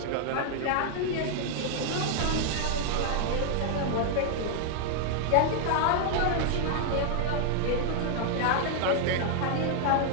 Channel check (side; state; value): both; different; correlation 0.00